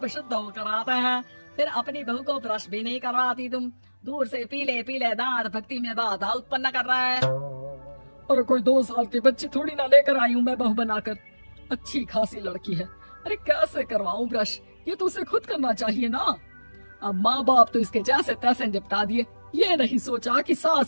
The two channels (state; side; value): inverted; both; correlation -1.00